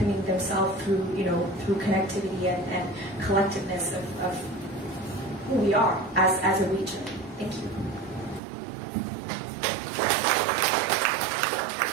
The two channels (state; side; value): drops out; left; at 8.4 s